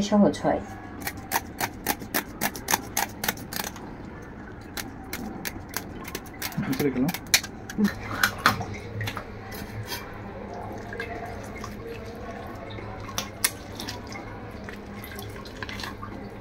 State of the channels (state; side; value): identical; both; correlation 1.00